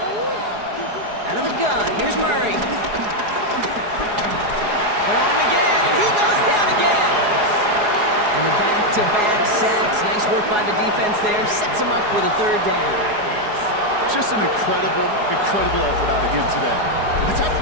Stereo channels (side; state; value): left; late; 4.8 ms